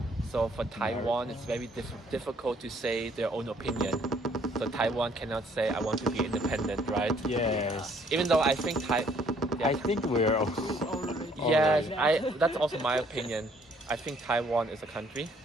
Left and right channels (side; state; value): both; normal; correlation 0.63